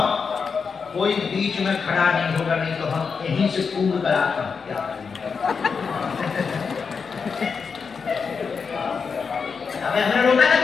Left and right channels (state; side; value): quieter; right; 5.6 dB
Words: कोई बीच में खड़ा नहीं होगा, नहीं तो हम यहीं से पूर्ण कराते हैं। हमें रोका था,